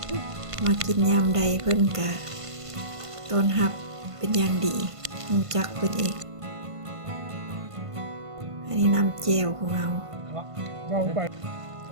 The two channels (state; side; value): late; left; 1.5 ms